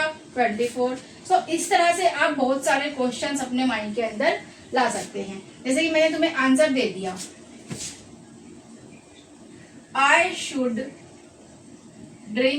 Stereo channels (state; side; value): identical; both; correlation 1.00